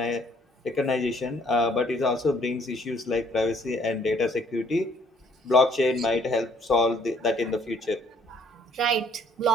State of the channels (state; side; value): normal; both; correlation 0.63